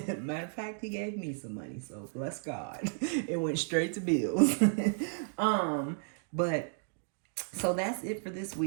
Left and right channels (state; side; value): silent; left; digital silence